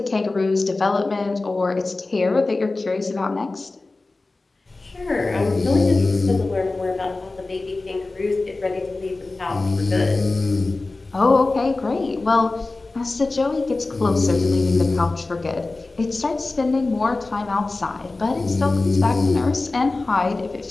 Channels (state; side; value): quieter; right; 3.3 dB